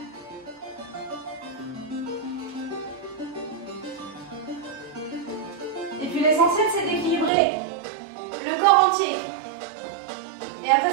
Et puis l'essentiel, c'est d'équilibrer le corps entier. Et après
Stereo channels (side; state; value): left; drops out; at 7.3 s